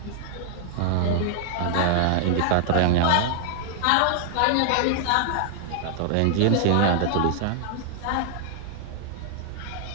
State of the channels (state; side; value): different; both; correlation 0.00